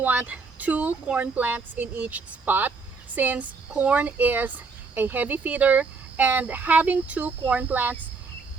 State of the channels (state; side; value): quieter; left; 4.5 dB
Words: 2 corn plants in each spot, since corn is a heavy feeder, and having 2 corn plants